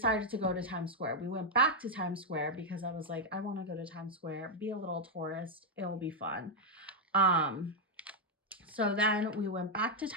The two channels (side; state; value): both; normal; correlation 0.01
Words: to go to Times Square. We went back to Times Square because I was like, I want to go to Times Square, be a little tourist. It'll be fun. So then we went back to